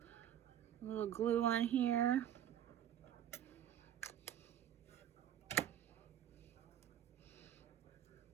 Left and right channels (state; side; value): quieter; left; 10.5 dB